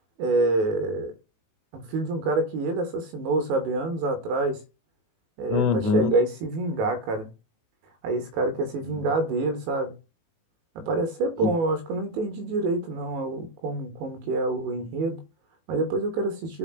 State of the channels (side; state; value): left; late; 18 ms